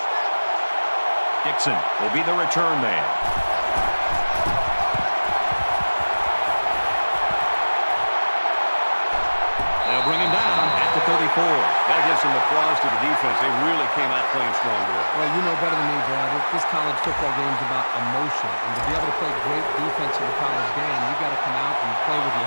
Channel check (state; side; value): inverted; both; correlation -1.00